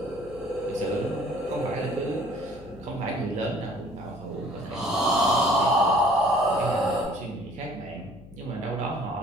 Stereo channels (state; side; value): noise; left; hum, 19 dB below the sound